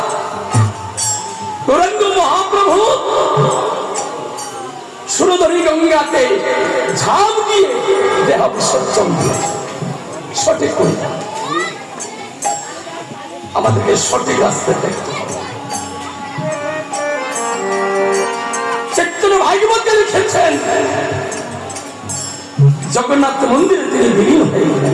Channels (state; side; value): identical; both; correlation 1.00